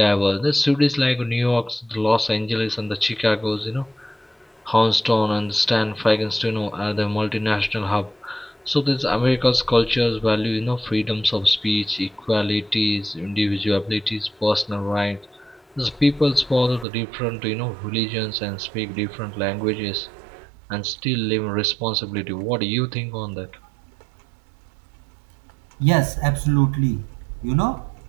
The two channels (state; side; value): drops out; left; at 16.9 s